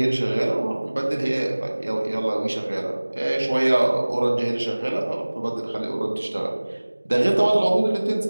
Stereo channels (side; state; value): both; inverted; correlation -1.00